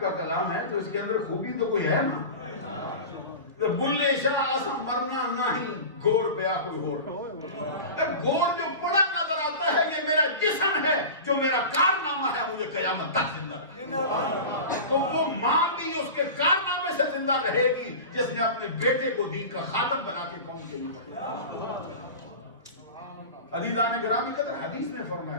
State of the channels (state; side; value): inverted; both; correlation -0.31